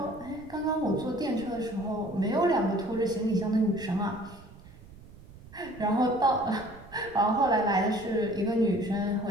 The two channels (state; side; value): noise; right; rumble, 20 dB below the sound